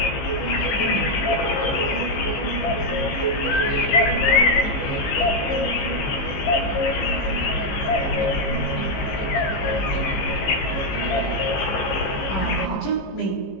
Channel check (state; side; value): late; right; 15 ms